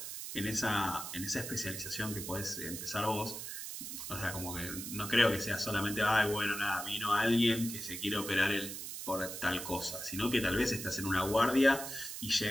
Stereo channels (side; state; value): right; noise; hiss, 7 dB below the sound